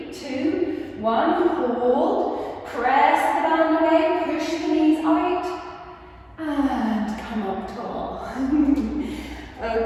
2, 1. Hold. Press the band away. Push the knees out. And come up tall.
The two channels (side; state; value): both; identical; correlation 1.00